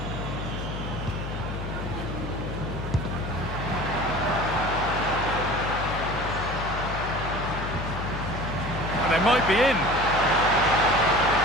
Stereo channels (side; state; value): left; noise; hum, 6 dB below the sound